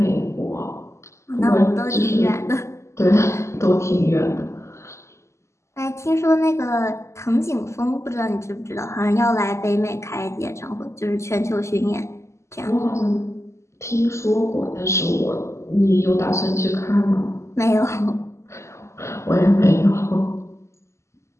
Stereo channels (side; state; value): right; late; 0.13 ms